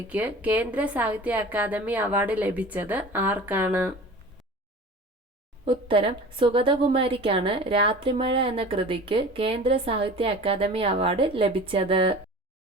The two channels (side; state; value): both; normal; correlation 0.39